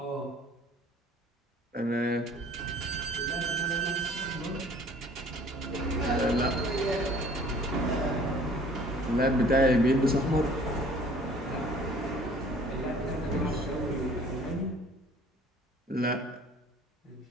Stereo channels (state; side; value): normal; both; correlation 0.52